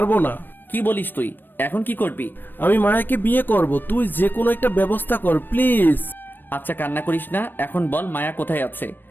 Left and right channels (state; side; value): late; right; 0.093 ms